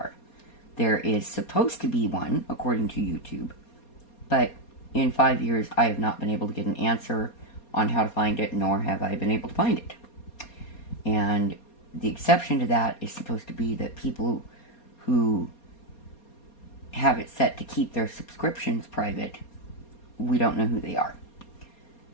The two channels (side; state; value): right; late; 4.2 ms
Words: There is supposed to be one, according to YouTube, But in 5 years, I have not been able to get an answer on how to find it, nor have I been able to find it. And the exception to that is supposed to be that people who have it set to keep their subscriptions private, we don't know who they are.